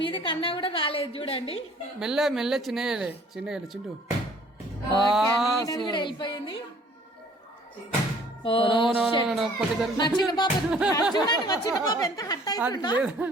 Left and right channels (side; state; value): both; normal; correlation 0.56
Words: మీది కన్నా కూడా రాలేదు. చూడండి మెల్ల చిన్న చింటూ కూడా వెళ్ళిపోయింది. మా చిన్న బాబు చూడండి, మా చిన్న బాబు ఎంత హట్ అయిపోయిందో.